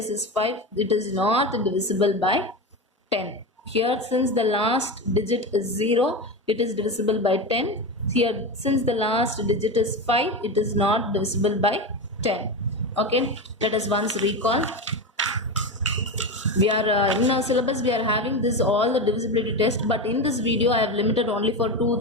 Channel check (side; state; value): both; normal; correlation 0.20